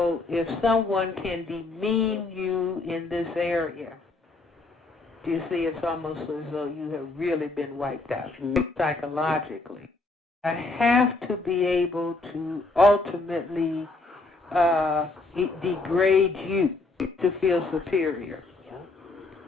if someone can demean you in this area, you see, it's almost as though you have really been wiped out psychologically. I have to be able to ultimately degrade you to feel superior.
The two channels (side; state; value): right; quieter; 3.4 dB